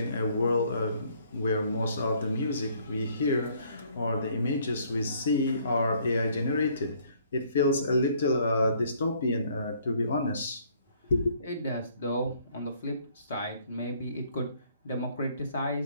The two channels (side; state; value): both; inverted; correlation -0.63